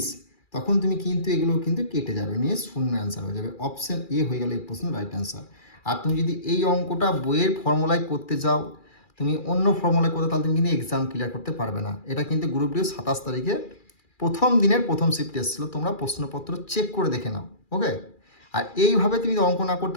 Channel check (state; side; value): late; right; 2.4 ms